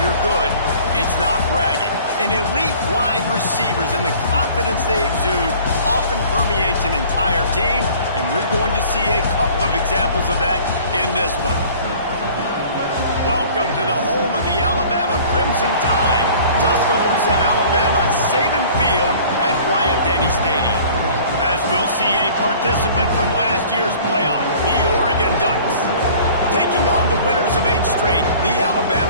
you're good, it's not bragging. And elite wide receivers and the confidence they exude often permeates an entire team, and we're going to see a couple of examples of that in this one. Welcome to the home of the Alabama Crimson Tide, Tuscaloosa, Alabama, Saban Field at Bryant-Denny Stadium. As we'll see a participant from last year's playoff, the Oregon Ducks, taking on the winners of 8 straight, the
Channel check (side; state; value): both; inverted; correlation -0.49